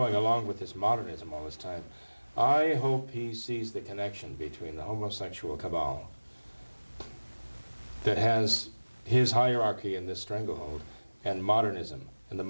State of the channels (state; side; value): inverted; both; correlation -1.00